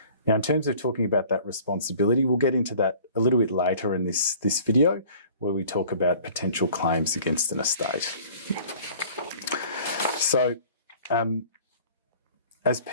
Now, in terms of talking about that responsibility, we'll get into that a little bit later in this video, where we talk about potential claims against an estate. So, as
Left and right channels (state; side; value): inverted; both; correlation -0.49